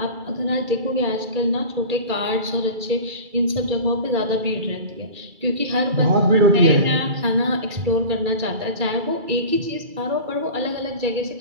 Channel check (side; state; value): left; late; 2.3 ms